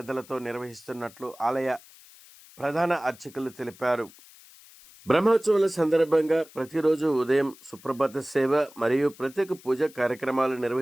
నిర్వహిస్తున్నట్లు ఆలయ ప్రధాన అర్చకులు తెలిపారు. బ్రహ్మోత్సవాల సందర్భంగా ప్రతిరోజు ఉదయం సుప్రభాత సేవ మరియు ప్రత్యేక పూజ కార్యక్రమాలు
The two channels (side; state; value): left; noise; hiss, 23 dB below the sound